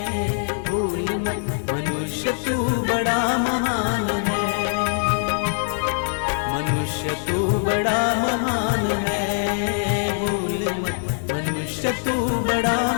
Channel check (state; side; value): silent; right; digital silence